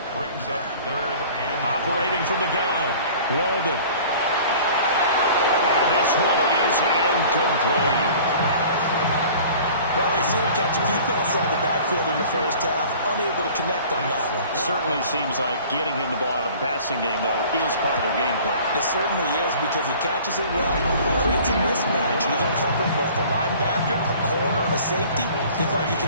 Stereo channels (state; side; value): inverted; both; correlation -0.47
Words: Brings up 3rd and operating from the gun. Walden. And this one is incomplete. Well, they've seen him catch a few passes out of the backfield in the first half, unable to connect on that one. Certainly seems like getting him the ball out of the passing game, though, is part of their game plan. It certainly is because he catches it well, creates a mismatch. He's going to come from both a linebacker, a corner, a safety. Seems like he can